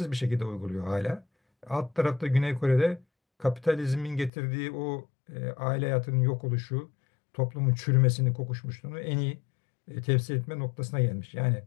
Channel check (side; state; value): right; drops out; at 4.3 s